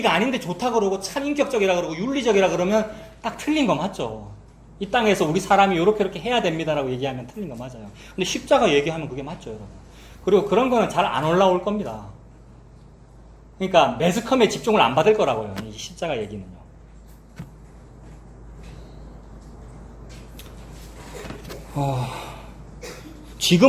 아닌데 좋다 그러고 참 인격적이라 그러고 윤리적이라 그러면 딱 틀린 거 맞죠. 이 땅에서 우리 사람이 이렇게 해야 됩니다라고 얘기하면 틀린 거 맞아요. 근데 십자가 얘기하면 그게 맞죠, 여러분. 그리고 그런 거는 잘 안 올라올 겁니다. 그러니까 매스컴에 집중을 안 받을 거라고요, 이 십자가 얘기는요.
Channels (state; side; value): identical; both; correlation 1.00